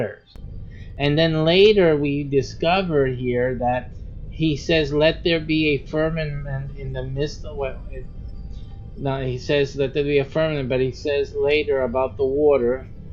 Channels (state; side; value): identical; both; correlation 1.00